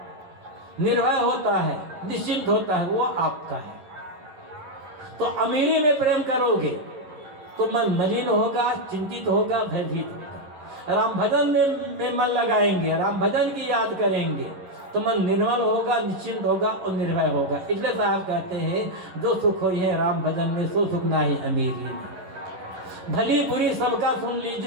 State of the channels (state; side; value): late; left; 11 ms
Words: निर्भय होता है, निश्चिंत होता है, वो आपका है। तो अमीरी में प्रेम करोगे तो मन मलिन होगा, चिंतित होगा, भयभीत होगा। राम भजन में मन लगाएंगे, राम भजन की याद करेंगे तो मन निर्मल होगा, निश्चिंत होगा और निर्भय होगा। इसलिए साहब कहते हैं जो सुख हो है राम भजन में, सो सुख ना ही अमीरी में। भली बुरी सबका सुन